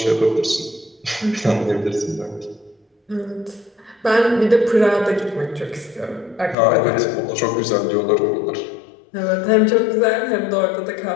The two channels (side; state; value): right; drops out; at 6.6 s